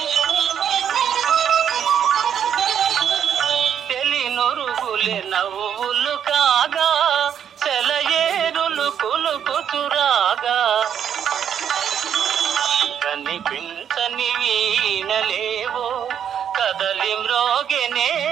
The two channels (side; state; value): left; quieter; 8.7 dB